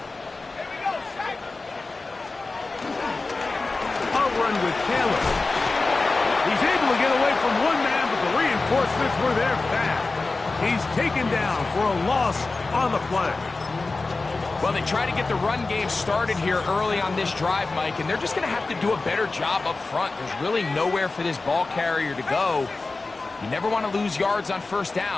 run with Taylor. He's able to get away from one man, but the reinforcements were there fast. He's taken down for a loss on the play. Well, they try to get the run game started here early on this drive, Mike, and they're just going to have to do a better job up front. There's really nowhere for this ball carrier to go. You never want to lose yards on first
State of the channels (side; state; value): right; quieter; 3.6 dB